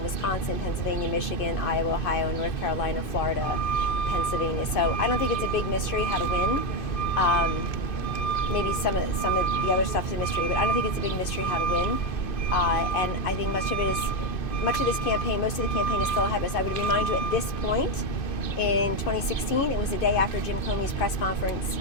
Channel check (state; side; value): late; right; 2.5 ms